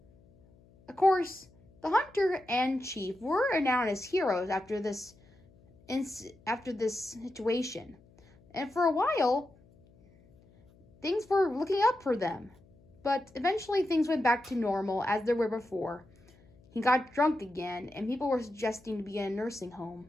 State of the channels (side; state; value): left; noise; hum, 28 dB below the sound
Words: Of course, the hunter and Chief were renowned as heroes after this situation, and for a while, things were looking up for them. But eventually, things went back to normal as they were before. He got drunk again, and people were suggesting to be in a nursing